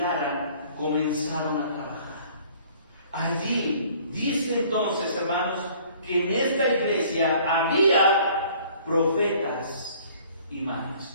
comenzaron a trabajar. Allí, dice entonces, hermanos, que en esta iglesia había profetas y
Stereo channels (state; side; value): inverted; both; correlation -0.55